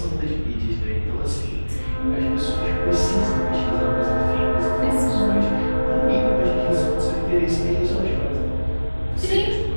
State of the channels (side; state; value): both; inverted; correlation -1.00